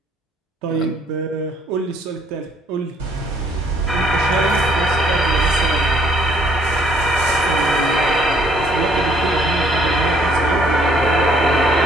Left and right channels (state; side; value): normal; both; correlation 0.64